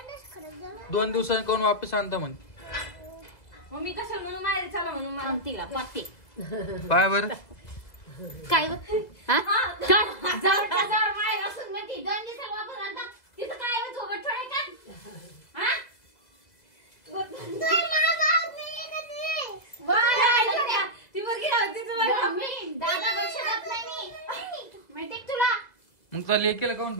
2 दिवसांनी कोण वापस आणता म्हणे. मग मी कशाला म्हणून माहेरी चला म्हणून मला? तिला पाते. पाय बरं. काय व? हा? काय? जवळ माहेर असून म्हणते 2 दिवसाला वापस आणता. तिथं काय आहे झोपट ठेवाय का? हा? ती बरगी होती तुम्हाला. मी दादा वर्ष जात नाही मी. माहिती का तुला? मग तुला लेकीला कोण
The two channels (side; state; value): right; late; 2.0 ms